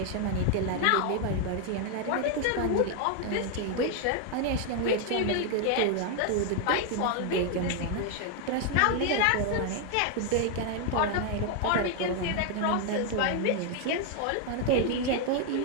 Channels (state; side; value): different; both; correlation 0.00